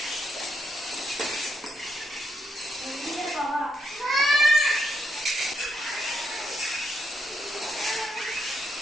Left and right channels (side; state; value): both; normal; correlation 0.79